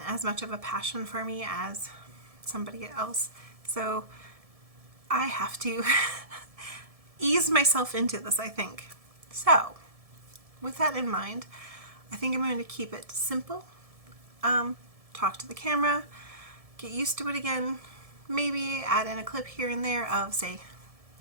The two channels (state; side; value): late; left; 1.7 ms